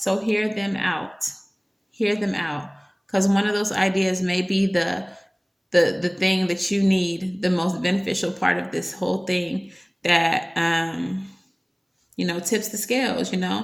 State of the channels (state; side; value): identical; both; correlation 1.00